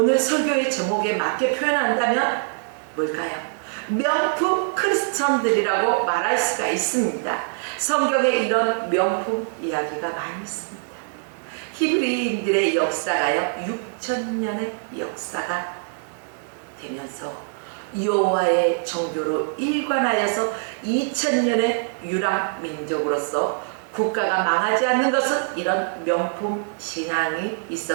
설교의 제목에 맞게 표현한다면 뭘까요? 명품 크리스천들이라고 말할 수가 있습니다. 성경에 이런 명품 이야기가 많이 있습니다. 히브리인들의 역사가요, 6,000년의 역사가 되면서 여호와의 정교로 일관하여서 2000년의 유랑 민족으로서 국가가 망하지 않는 것은 이런 명품 신앙이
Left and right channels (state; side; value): silent; left; digital silence